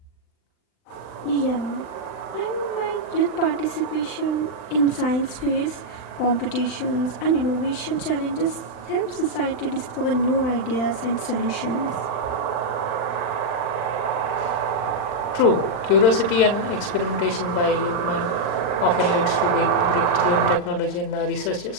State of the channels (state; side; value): late; right; 39 ms